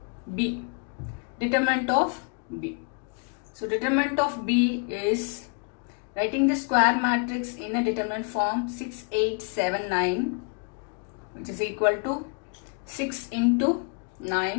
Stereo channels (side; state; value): right; quieter; 35.9 dB